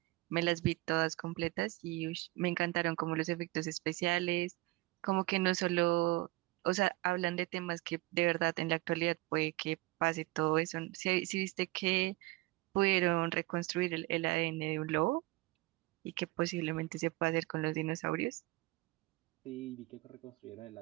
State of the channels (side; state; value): left; quieter; 20.4 dB